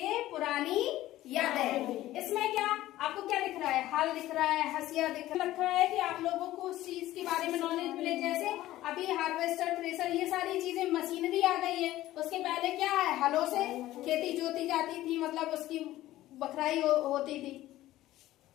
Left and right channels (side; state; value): right; quieter; 15.3 dB